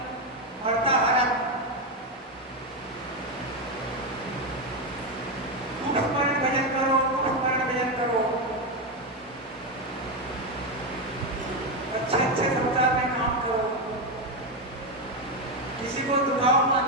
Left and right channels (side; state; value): both; normal; correlation 0.09